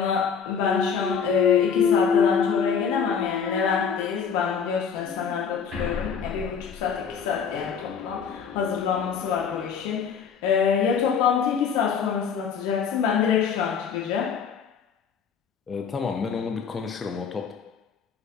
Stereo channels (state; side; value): quieter; right; 6.7 dB